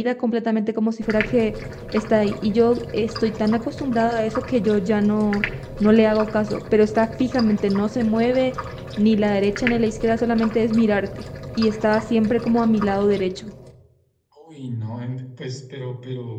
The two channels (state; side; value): identical; both; correlation 1.00